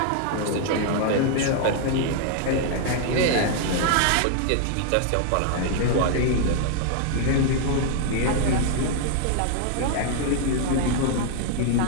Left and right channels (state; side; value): different; both; correlation 0.00